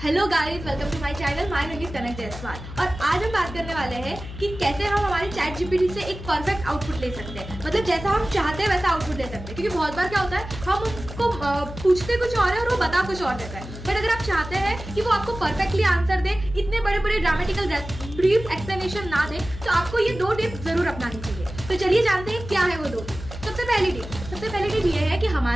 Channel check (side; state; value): left; noise; hum, 11 dB below the sound